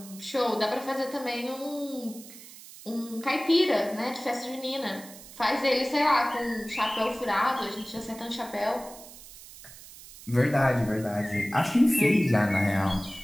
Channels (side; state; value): right; noise; hiss, 17 dB below the sound